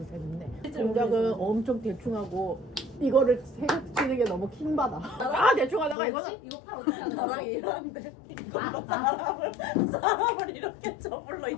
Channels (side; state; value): right; drops out; at 6.0 s